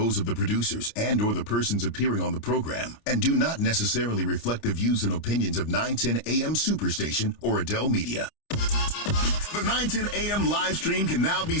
of the producers and or the persons appearing on the program and do not necessarily reflect the views and opinions of 910 AM Superstation or Adele Media. The 910 AM live stream can now be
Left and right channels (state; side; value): late; right; 29 ms